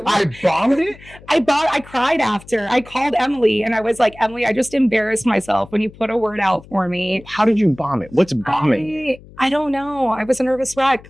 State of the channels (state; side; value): noise; left; hum, 21 dB below the sound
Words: bombed it? I cried after. I called Emily and I was like, Emily, I just embarrassed myself when you put a word out for me. How did you bomb it? What's bombing? I don't know. I was a nervous wreck.